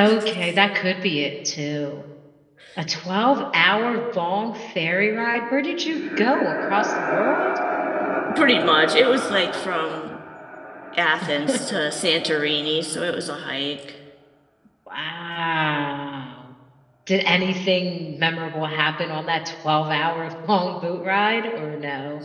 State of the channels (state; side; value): identical; both; correlation 1.00